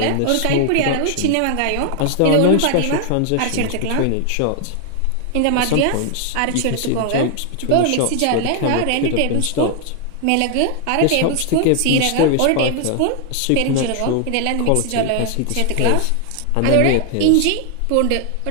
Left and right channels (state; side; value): different; both; correlation 0.00